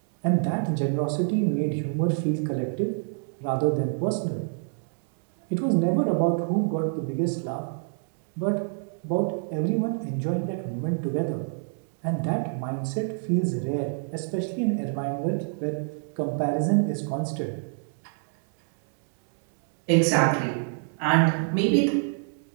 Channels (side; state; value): left; silent; 60 dB below the other